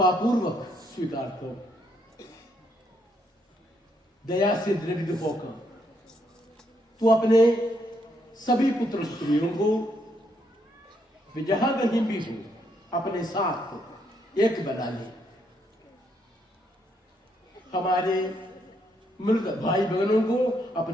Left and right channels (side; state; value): both; normal; correlation 0.74